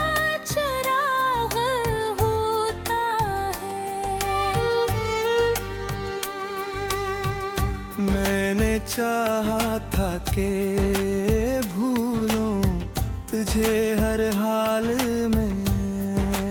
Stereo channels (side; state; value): both; identical; correlation 1.00